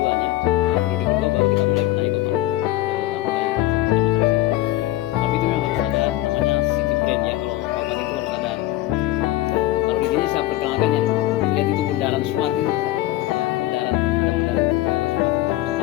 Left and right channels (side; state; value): right; quieter; 15.9 dB